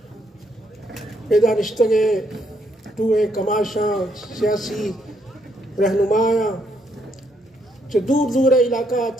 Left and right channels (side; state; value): both; normal; correlation 0.73